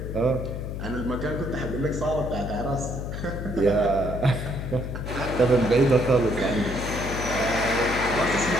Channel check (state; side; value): noise; left; hum, 5 dB below the sound